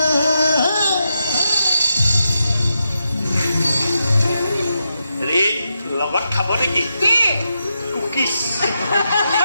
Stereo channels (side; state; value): both; inverted; correlation -0.84